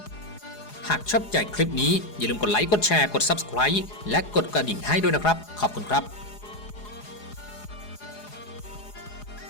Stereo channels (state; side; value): late; right; 4.8 ms